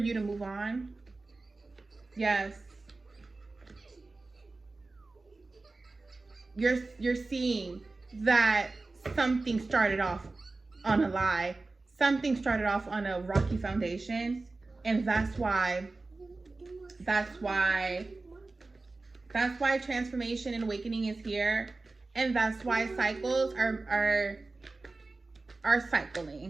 to move on. Yes. You're seeing that something started off on a lie. Something started off on a rocky foundation. And that's why transformation and awakening is here. And that's why cycles are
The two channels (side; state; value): left; quieter; 3.4 dB